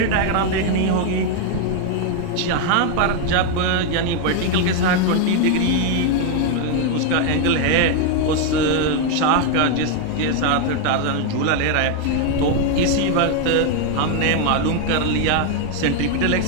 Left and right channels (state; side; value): different; both; correlation 0.01